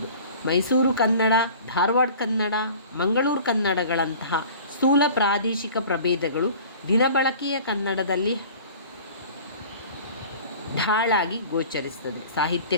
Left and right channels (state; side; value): inverted; both; correlation -0.44